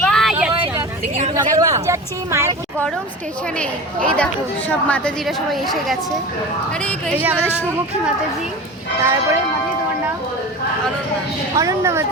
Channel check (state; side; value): normal; both; correlation 0.32